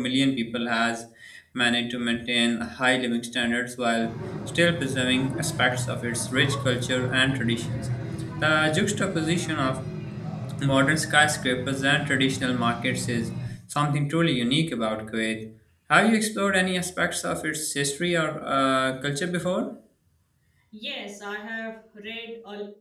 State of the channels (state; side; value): identical; both; correlation 1.00